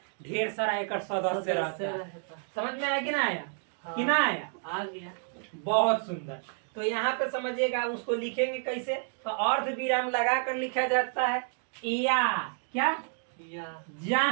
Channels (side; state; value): left; silent; 58 dB below the other